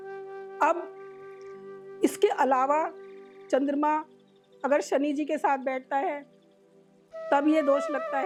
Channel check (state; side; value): identical; both; correlation 1.00